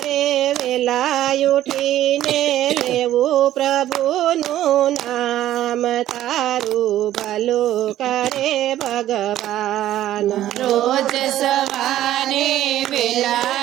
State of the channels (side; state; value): left; quieter; 13.1 dB